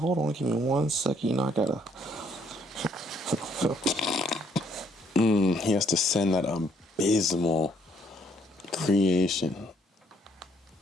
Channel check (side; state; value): both; normal; correlation 0.68